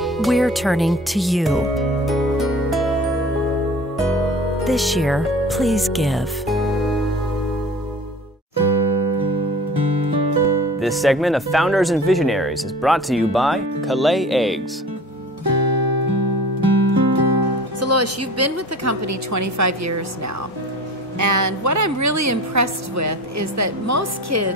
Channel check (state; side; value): normal; both; correlation 0.41